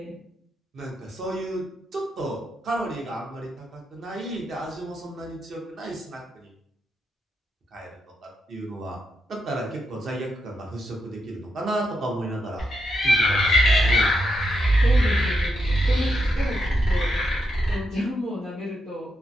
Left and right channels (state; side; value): normal; both; correlation 0.82